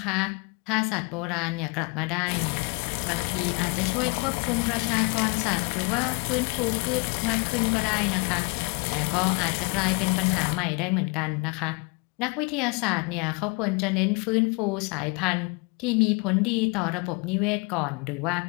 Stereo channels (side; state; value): right; quieter; 30.4 dB